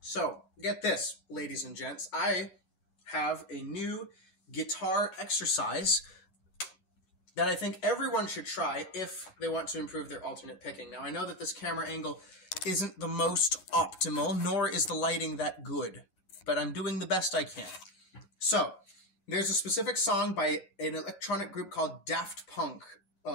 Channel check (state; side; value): late; right; 11 ms